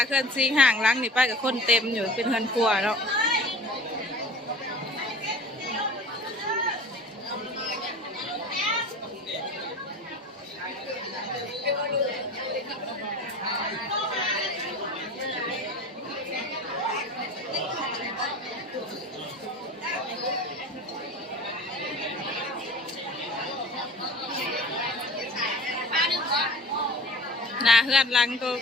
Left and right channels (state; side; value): normal; both; correlation 0.39